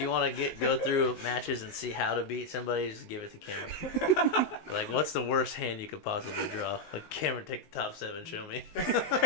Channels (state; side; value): late; right; 19 ms